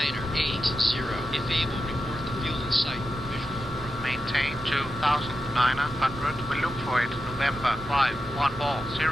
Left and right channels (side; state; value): both; normal; correlation 0.90